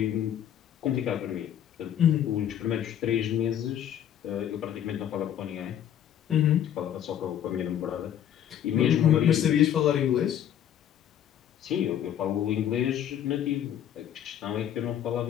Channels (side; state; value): right; quieter; 10.2 dB